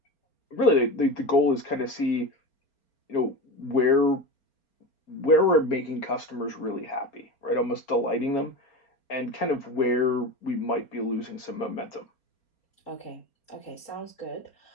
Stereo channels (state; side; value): late; right; 4.3 ms